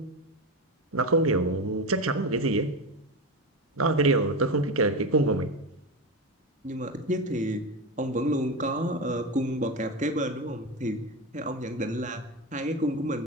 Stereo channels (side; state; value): both; normal; correlation 0.19